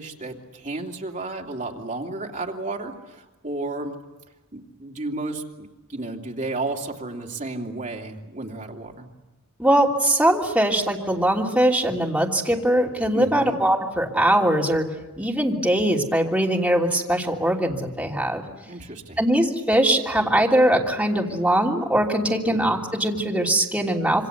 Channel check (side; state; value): both; normal; correlation 0.68